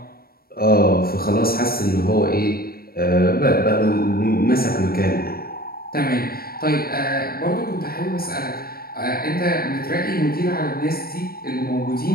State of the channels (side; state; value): right; late; 0.44 ms